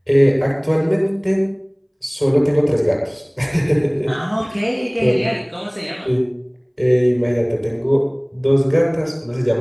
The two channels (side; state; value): both; identical; correlation 1.00